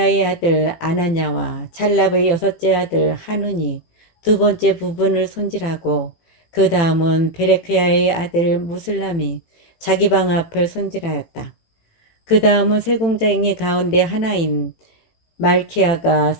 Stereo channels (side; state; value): right; late; 18 ms